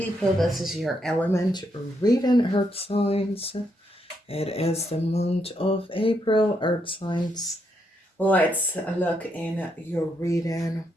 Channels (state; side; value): normal; both; correlation 0.78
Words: This is your element reading, Earth signs. It is the month of April, Earth signs. Let's look in your reading.